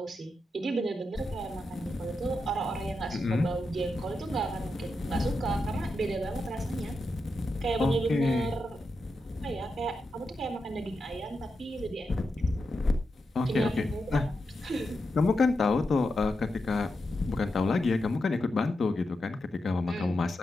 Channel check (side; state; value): both; normal; correlation 0.87